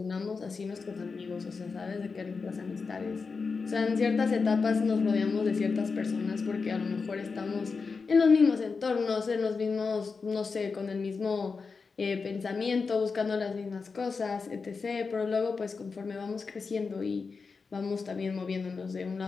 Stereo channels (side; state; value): right; quieter; 4.8 dB